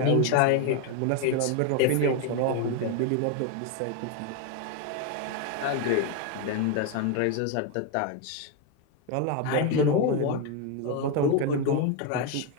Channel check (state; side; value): different; both; correlation 0.02